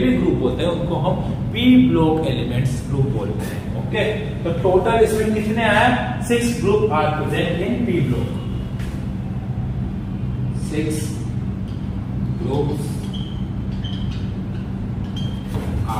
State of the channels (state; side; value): identical; both; correlation 1.00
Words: ग्रुप होते हैं उनको हम पी ब्लॉक एलिमेंट्स ग्रुप बोलते हैं। ओके, तो टोटल इसमें कितने आए? 6 group are present in P block. 6 groups